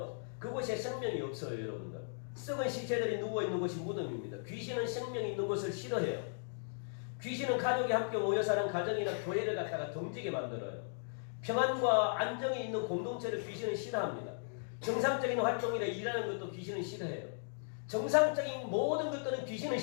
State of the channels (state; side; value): silent; right; digital silence